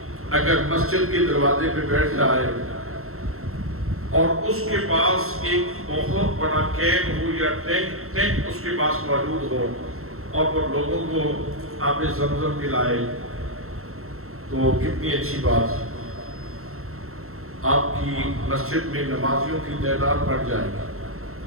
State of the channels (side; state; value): left; late; 0.63 ms